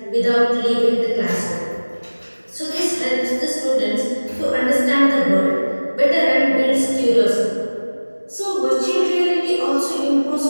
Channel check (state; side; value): inverted; both; correlation -1.00